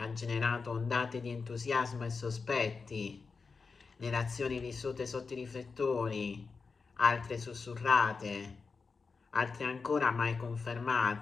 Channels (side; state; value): right; quieter; 4.7 dB